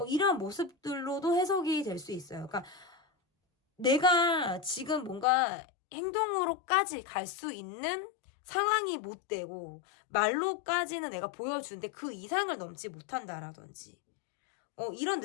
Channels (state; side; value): drops out; right; at 5.2 s